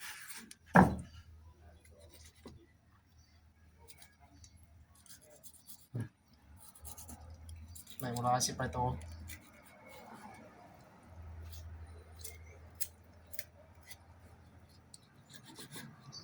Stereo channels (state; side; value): identical; both; correlation 1.00